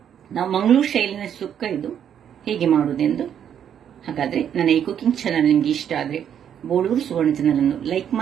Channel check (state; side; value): quieter; left; 9.0 dB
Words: ನಾವು ಮಂಗಳೂರು ಶೈಲಿನ ಸುಕ್ಕ, ಇದು ಹೇಗೆ ಮಾಡುವುದೆಂದು. ಹಾಗಾದ್ರೆ ನನ್ನ ಈ ಕುಕಿಂಗ್ ಚಾನಲ್ ನಿಮ್ಗೆ ಇಷ್ಟ ಆದ್ರೆ ಬೋಳೂರು ಸುವರ್ಣ ಚಾನಲ್ ಅನ್ನು ಲೈಕ್